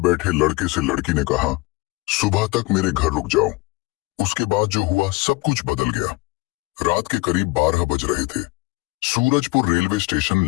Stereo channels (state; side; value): quieter; right; 23.7 dB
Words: लड़के से लड़की ने कहा, सुबह तक मेरे घर रुक जाओ। उसके बाद जो हुआ सब कुछ बदल गया। रात के करीब 12 बज रहे थे। सूरजपुर रेलवे स्टेशन